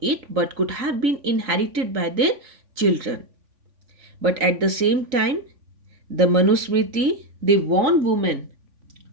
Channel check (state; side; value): late; left; 3.5 ms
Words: it but could have been inherited by their children. But at the same time, the Manusmriti they warn women